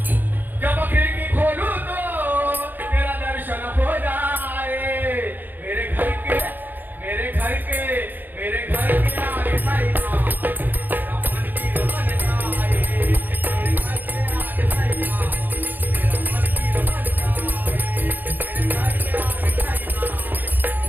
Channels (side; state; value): left; late; 0.088 ms